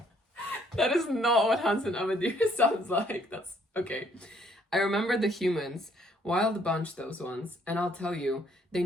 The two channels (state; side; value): normal; both; correlation 0.66